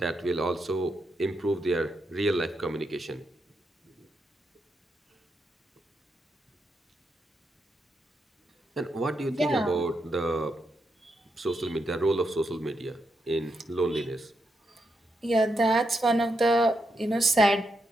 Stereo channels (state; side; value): normal; both; correlation 0.83